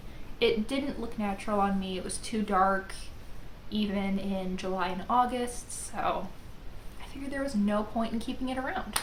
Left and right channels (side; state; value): both; identical; correlation 1.00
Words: It didn't look natural on me. It was too dark, even in July and August, so I figured there was no point in keeping it around.